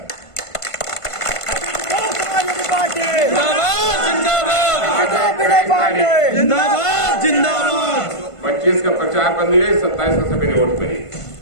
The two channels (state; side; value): late; right; 1.5 ms